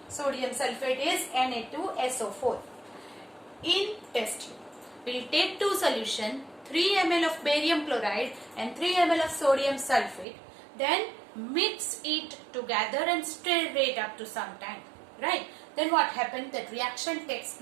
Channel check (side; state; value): left; drops out; at 10.2 s